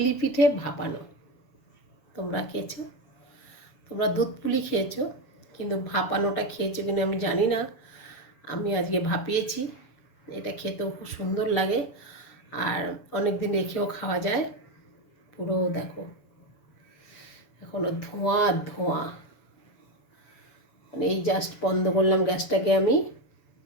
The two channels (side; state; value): right; late; 7.1 ms